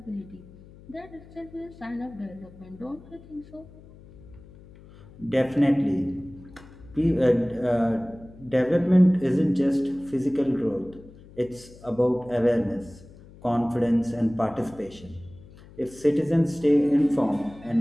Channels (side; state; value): left; noise; hum, 21 dB below the sound